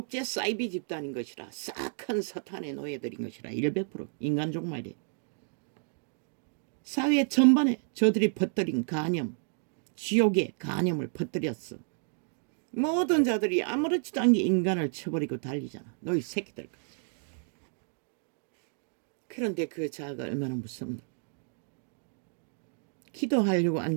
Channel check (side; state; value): left; silent; 57 dB below the other